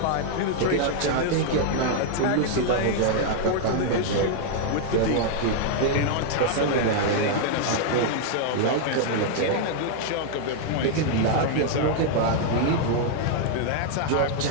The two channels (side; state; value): both; different; correlation -0.01